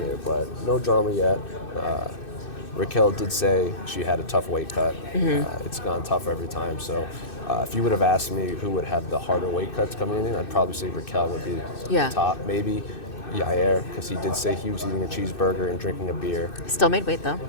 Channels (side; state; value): right; late; 2.6 ms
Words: but no drama yet. Raquel did say she had a tough weight cut. Mm-hmm. It's gone tougher every time. So if you would have asked me who would have the harder weight cuts coming in, I'd probably say Raquel would be the top. Maybe Yair, because he did say he was eating a cheeseburger and drinking a beer. Still made weight, though.